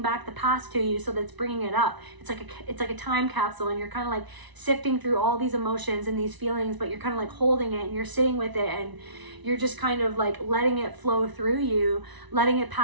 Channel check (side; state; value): left; late; 1.0 ms